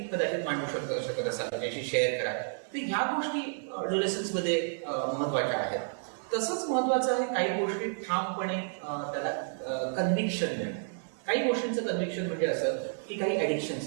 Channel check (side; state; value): left; silent; 57 dB below the other